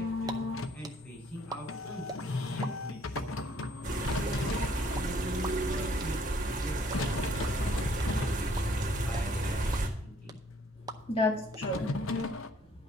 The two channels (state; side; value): normal; both; correlation 0.63